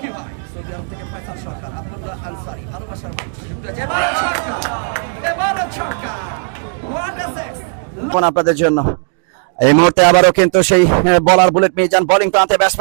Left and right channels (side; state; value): left; silent; 67 dB below the other